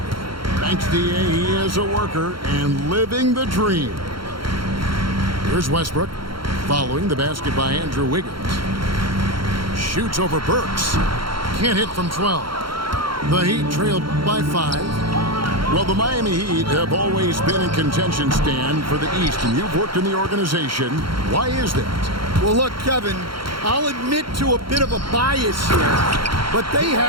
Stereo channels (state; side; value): late; left; 0.73 ms